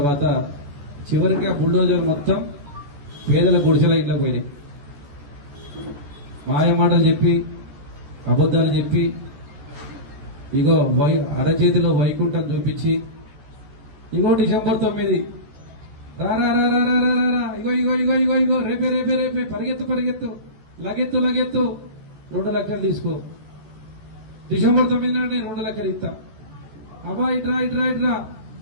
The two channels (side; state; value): left; late; 14 ms